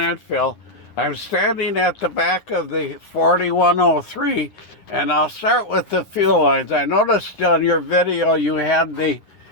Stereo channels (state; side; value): late; right; 9.2 ms